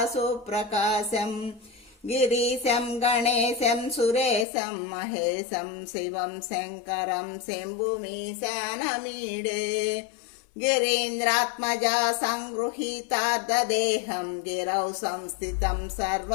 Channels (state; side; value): drops out; right; at 4.5 s